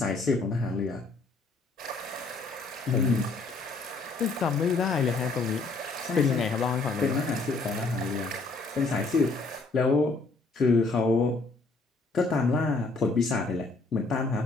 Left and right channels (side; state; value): right; quieter; 3.6 dB